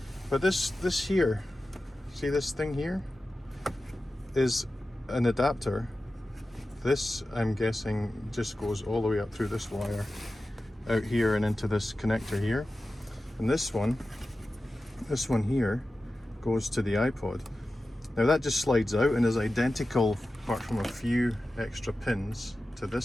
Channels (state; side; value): normal; both; correlation 0.94